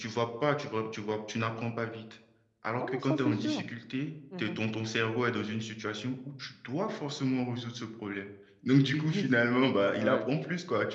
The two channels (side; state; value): both; identical; correlation 1.00